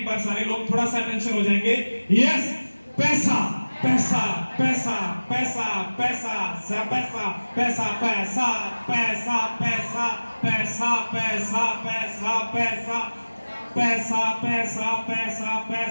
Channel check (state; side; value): inverted; both; correlation -1.00